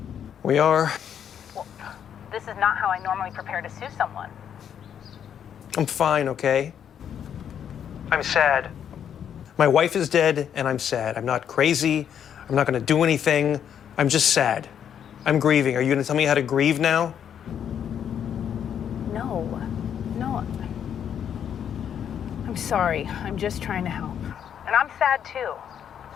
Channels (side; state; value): right; quieter; 8.8 dB